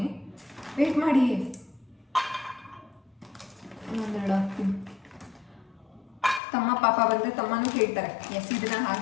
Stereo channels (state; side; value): drops out; right; at 6.4 s